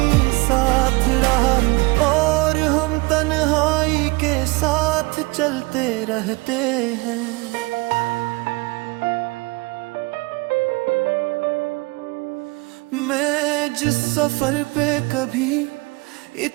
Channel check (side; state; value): left; quieter; 25.4 dB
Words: साथ रहा, और हम तन्हाई के साथ चलते रहते हैं। मैं जिस सफर पे कभी